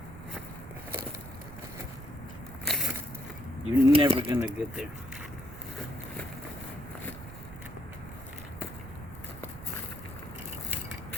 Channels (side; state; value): right; noise; rumble, 14 dB below the sound